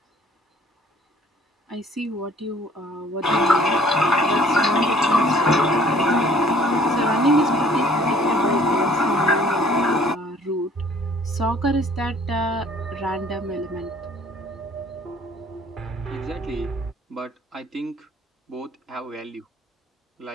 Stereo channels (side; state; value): both; normal; correlation 0.57